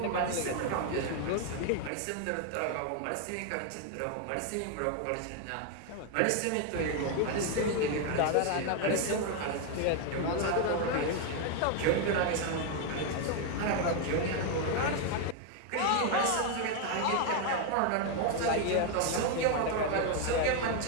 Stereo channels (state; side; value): different; both; correlation 0.01